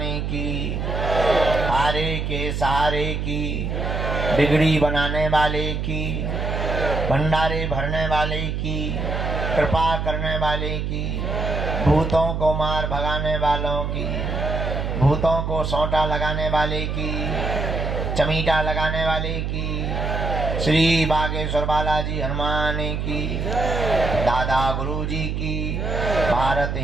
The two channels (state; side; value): noise; right; hum, 2 dB below the sound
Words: की, हारे के सहारे की, बिगड़ी बनाने वाले की, भंडारे भरने वाले की, कृपा करने वाले की, भूतों को मार भगाने वालों की, भूतों को सोंटा लगाने वाले की, चमीटा लगाने वाले की, श्री बागेश्वर बालाजी हनुमान की, दादा गुरुजी की, भारत